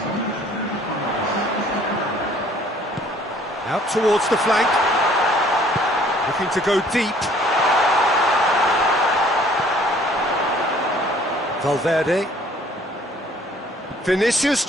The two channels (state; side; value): normal; both; correlation 0.57